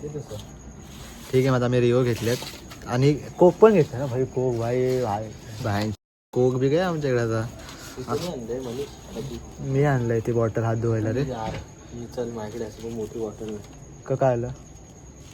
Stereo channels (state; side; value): identical; both; correlation 1.00